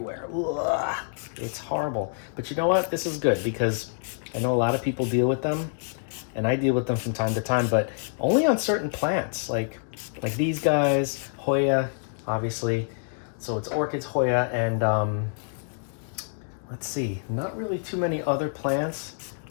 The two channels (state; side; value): silent; right; digital silence